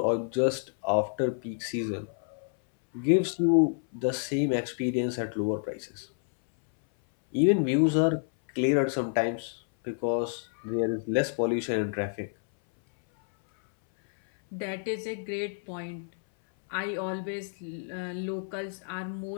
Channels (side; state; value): right; silent; 59 dB below the other